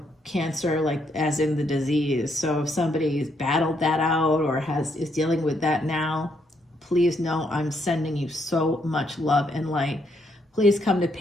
cancer like as in the disease. So if somebody's battled that out or is dealing with that now, please know I'm sending you so much love and light. Please come to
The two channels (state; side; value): normal; both; correlation 0.74